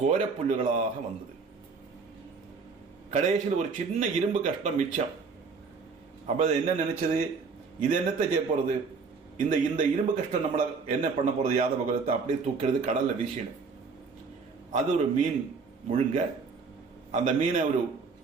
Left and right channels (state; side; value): quieter; left; 4.9 dB